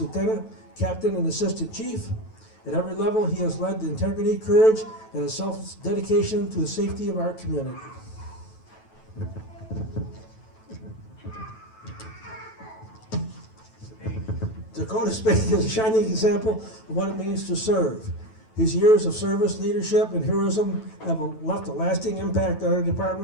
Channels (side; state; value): right; late; 9.2 ms